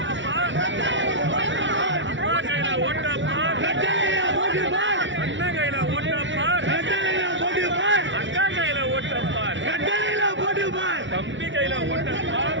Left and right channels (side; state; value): left; late; 0.55 ms